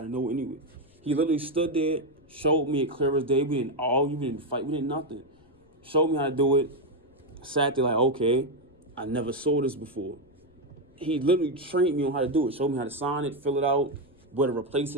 know anyway. He literally stood there, showed me it clear as day. We didn't argue, we didn't fight, we didn't nothing. Showed me how to do it. Sat there like, okay, I never saw this before. He literally trained me on how to do it. Showed me how to sign it, fill it out, where to replace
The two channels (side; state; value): left; noise; rumble, 30 dB below the sound